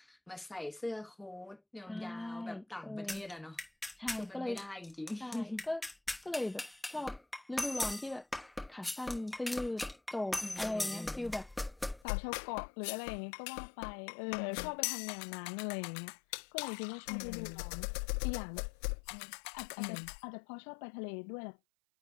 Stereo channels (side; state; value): right; drops out; at 12.1 s